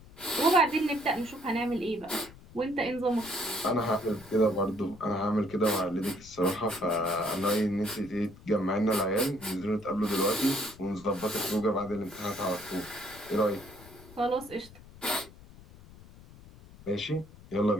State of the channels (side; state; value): left; noise; rumble, 20 dB below the sound